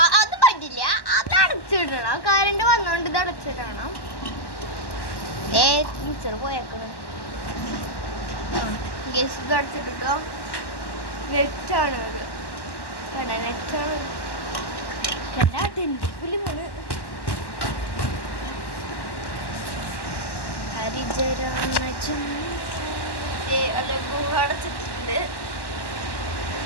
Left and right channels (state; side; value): late; right; 1.1 ms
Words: അത് പറ്റില്ല. അത് അടച്ചിടണം. കറണ്ട് വന്നോണ്ട് ഇത് അടച്ചിടണം. ടീച്ചർ പോയേക്കണം. ഗസ് ഇത് അടച്ചിട്ടോ. നെറ്റാണ് അത്. നെറ്റാണ് പുലിമാണ്. അടച്ചിട്ടുണ്ട്.